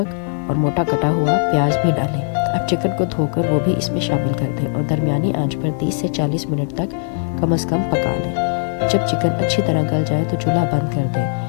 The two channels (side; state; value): right; silent; 67 dB below the other